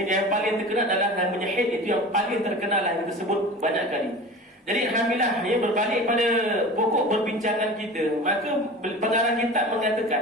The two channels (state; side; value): normal; both; correlation 0.35